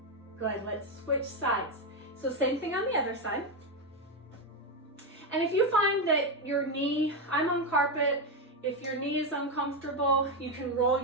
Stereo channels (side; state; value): both; normal; correlation 0.07